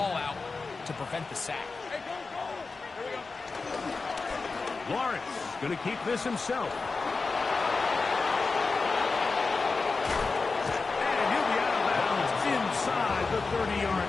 out to prevent the sack. Lawrence going to keep this himself. And he'll be out of bounds inside the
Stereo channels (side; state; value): right; quieter; 4.1 dB